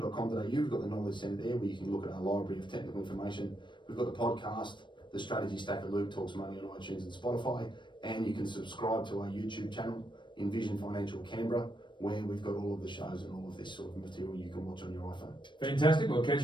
we've got the knowledge centre there where you can look at our library of technical information. We've got the podcast, the Strategy Stacker Luke Talks Money on iTunes and Spotify, and you can subscribe to our YouTube channel, Envision Financial Canberra, where we've got all of the shows and all of this sort of material you can watch on your iPhone. Fantastic. We'll catch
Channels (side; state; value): right; late; 0.23 ms